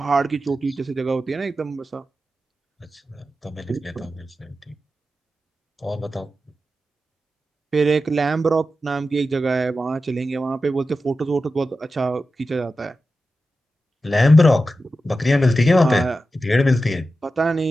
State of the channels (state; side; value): normal; both; correlation 0.92